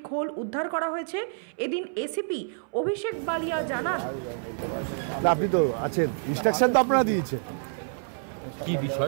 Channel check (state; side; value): silent; left; 60 dB below the other